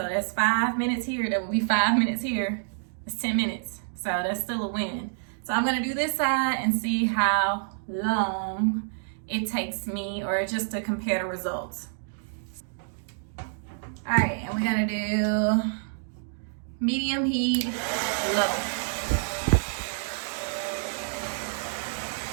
that's 5 minutes here, that will be 5 minutes here. It's 10 minutes, so that's still a win. So I'm gonna do this side and see how long it takes me, or just to compare the results. All right, and we're gonna do medium heat, low.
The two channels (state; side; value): silent; left; digital silence